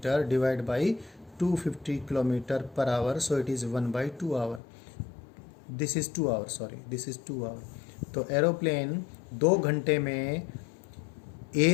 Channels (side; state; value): right; drops out; at 4.6 s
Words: divide by 250 kilometre per hour, so it is 1/2 hour. This is 2 hour, sorry this is 2 hour. तो एरोप्लेन 2 घंटे में